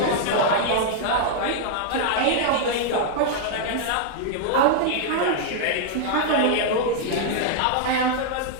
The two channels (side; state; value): both; different; correlation -0.01